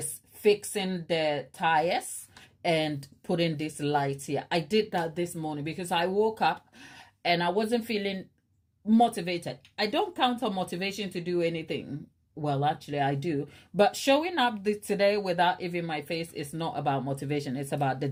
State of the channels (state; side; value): identical; both; correlation 1.00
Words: fixing the tires and putting these lights here. I did that this morning because I woke up and I wasn't feeling motivated. I don't count on motivation to do anything. Well, actually, I do. But showing up today without even my face is not about motivation. It's about the